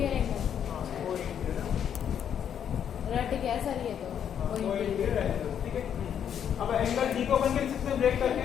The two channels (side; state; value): right; quieter; 8.8 dB